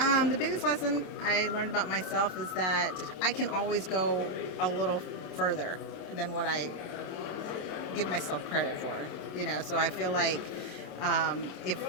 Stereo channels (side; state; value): right; late; 27 ms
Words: biggest lesson I learned about myself is that I can always go a little further than what I give myself credit for. So I feel like if